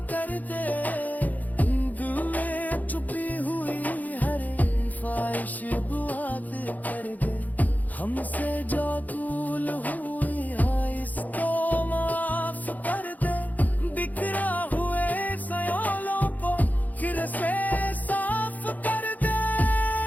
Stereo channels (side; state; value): right; late; 0.080 ms